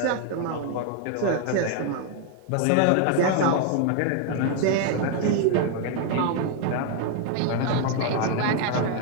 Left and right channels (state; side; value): different; both; correlation 0.00